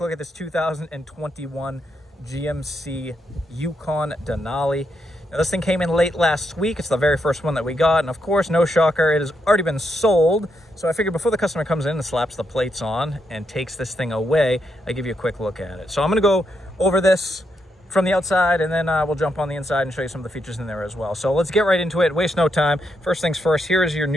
at this 2021 GMC Yukon Denali. Now, this thing came in late last week. It's the very first one that we got, and of course, no shocker, it has already been sold. So I figured before the customer comes in and slaps the plates on and takes this thing away, I give you a quick look at it. So I'm going to go over this from the outside, and then we'll jump on the inside and show you some of the features in there as well. So let's get right into it, waste no time. First things first, here is your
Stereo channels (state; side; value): normal; both; correlation 0.80